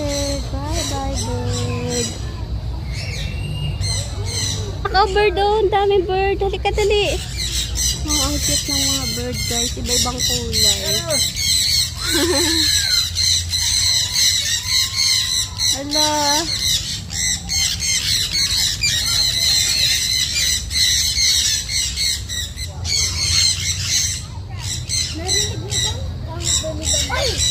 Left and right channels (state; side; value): identical; both; correlation 1.00